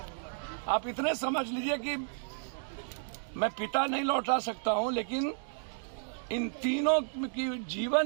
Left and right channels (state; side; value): silent; left; digital silence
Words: आप इतने समझ लीजिए कि मैं पिता नहीं लौटा सकता हूं, लेकिन इन तीनों की